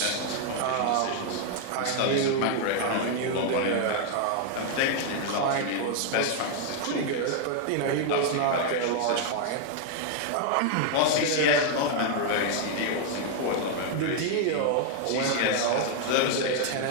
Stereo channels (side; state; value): both; different; correlation 0.00